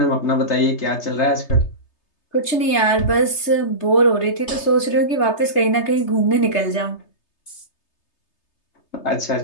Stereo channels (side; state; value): right; late; 3.3 ms